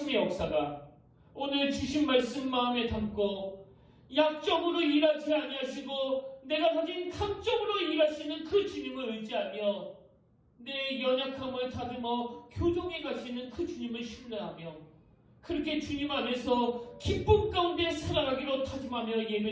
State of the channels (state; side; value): identical; both; correlation 1.00